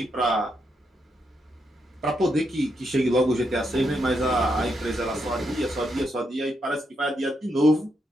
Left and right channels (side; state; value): both; normal; correlation 0.81